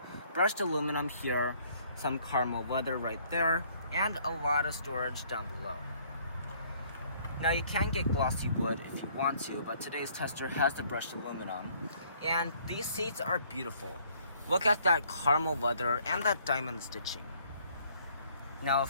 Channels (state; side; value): inverted; both; correlation -0.62